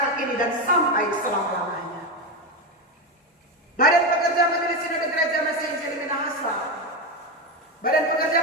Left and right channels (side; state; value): both; normal; correlation 0.14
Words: ini dan sampai selama-lamanya. Badan Pekerja Majelis Sinode Gereja Mesih Injil Minahasa, Badan